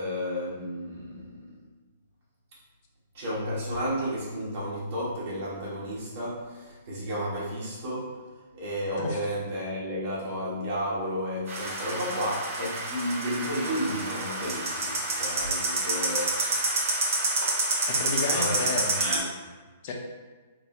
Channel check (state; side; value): inverted; both; correlation -0.44